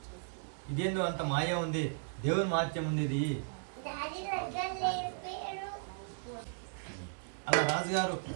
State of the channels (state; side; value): silent; left; digital silence